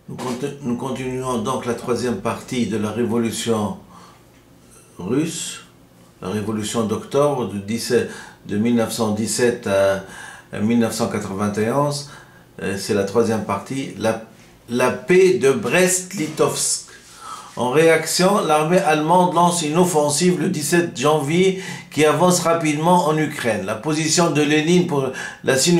Nous continuons donc la troisième partie de la révolution russe, la révolution d'octobre de 1917 à 1991. C'est la troisième partie, la paix de Brest-Litovsk. En réaction, l'armée allemande lance une offensive le 17 janvier qui avance rapidement en Ukraine. La position de Lénine pour la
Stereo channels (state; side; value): identical; both; correlation 1.00